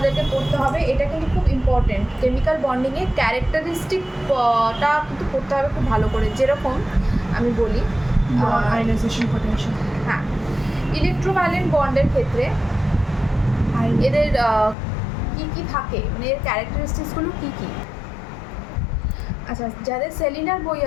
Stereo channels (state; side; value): drops out; right; at 14.8 s